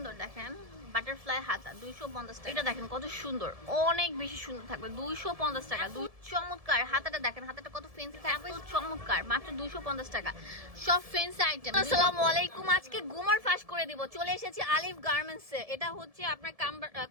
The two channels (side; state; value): left; late; 1.7 ms